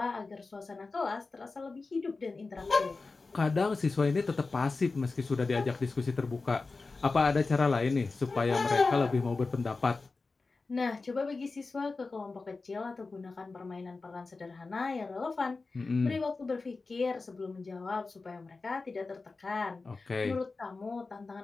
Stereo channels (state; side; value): quieter; right; 3.9 dB